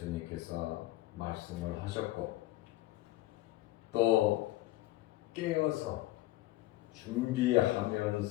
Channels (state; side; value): quieter; right; 17.2 dB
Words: 말씀을 하셨고 또 깨어서